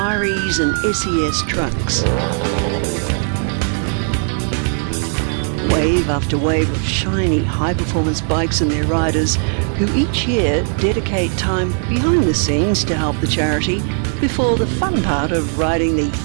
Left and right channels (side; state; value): left; silent; 56 dB below the other